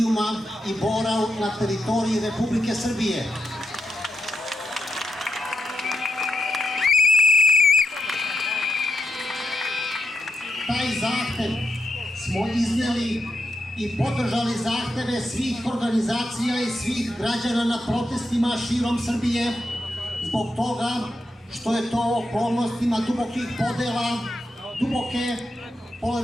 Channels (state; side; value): normal; both; correlation 0.85